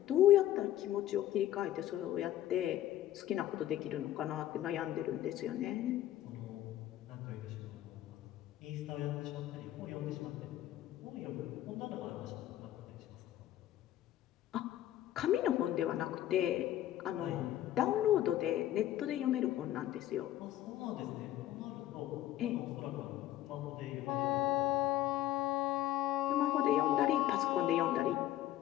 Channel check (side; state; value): right; quieter; 13.3 dB